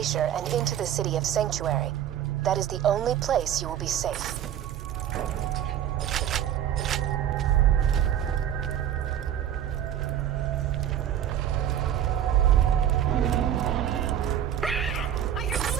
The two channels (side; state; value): left; quieter; 10.4 dB